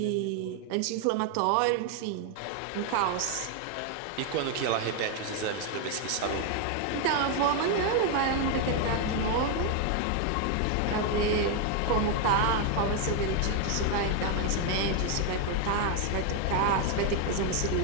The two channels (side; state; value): both; different; correlation 0.01